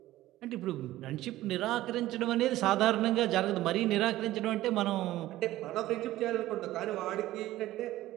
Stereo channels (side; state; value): left; quieter; 15.5 dB